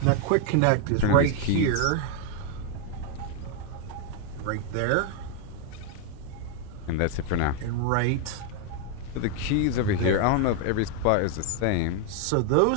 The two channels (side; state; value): both; different; correlation 0.01